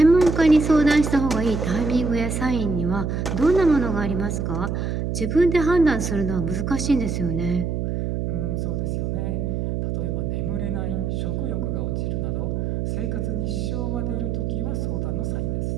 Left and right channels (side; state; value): right; noise; hum, 1 dB below the sound